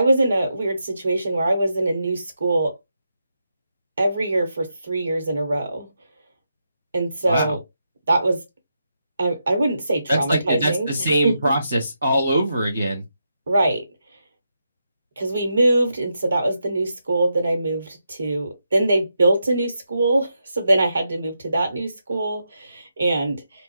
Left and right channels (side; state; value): both; inverted; correlation -0.84